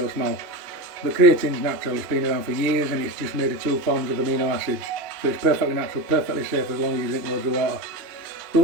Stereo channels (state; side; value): late; left; 2.8 ms